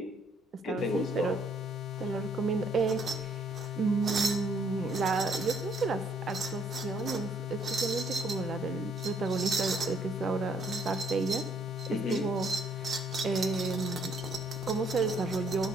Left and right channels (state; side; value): normal; both; correlation 0.66